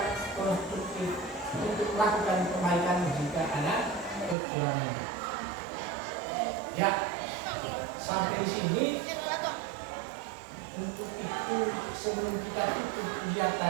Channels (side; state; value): left; drops out; at 4.4 s